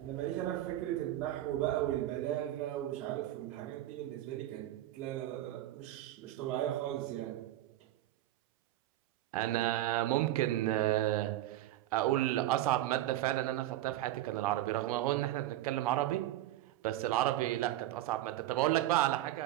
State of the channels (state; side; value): quieter; left; 14.5 dB